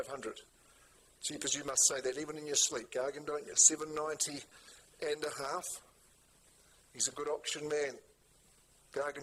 Jeepers, you must say that even in your sleep, Gargan, don't you? 790 and a half. He's a good auction man.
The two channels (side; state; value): both; identical; correlation 1.00